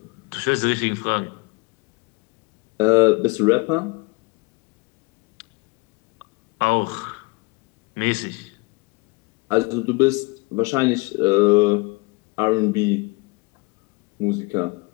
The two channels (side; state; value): right; quieter; 27.5 dB